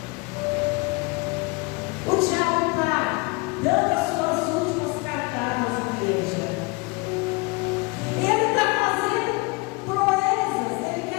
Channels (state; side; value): quieter; right; 27.8 dB